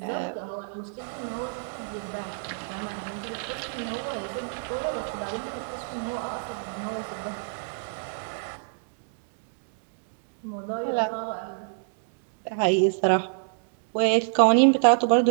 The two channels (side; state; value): left; silent; digital silence